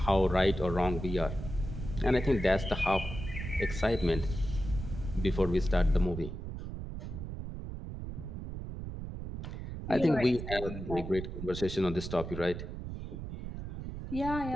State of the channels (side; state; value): right; noise; rumble, 8 dB below the sound